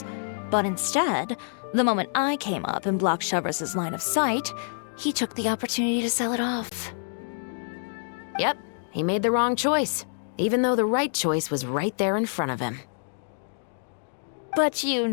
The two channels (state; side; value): silent; right; digital silence